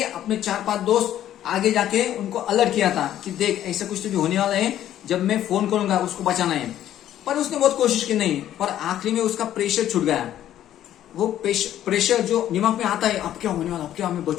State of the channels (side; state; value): right; quieter; 11.8 dB